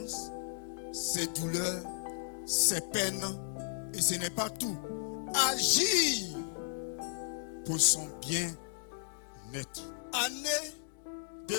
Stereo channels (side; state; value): right; silent; digital silence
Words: ses douleurs, ses peines, et ce n'est pas tout. Agir pour son bien-être. Année de